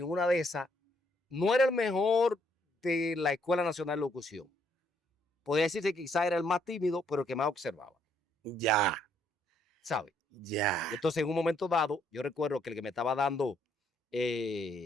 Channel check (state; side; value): normal; both; correlation 0.70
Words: una de esas no era el mejor de la Escuela Nacional de Locución. Podría decirse que quizá era el más tímido, pero el que más observaba. Ya. ¿Sabes? Ya. Y entonces en un momento dado, yo recuerdo que el que me estaba dando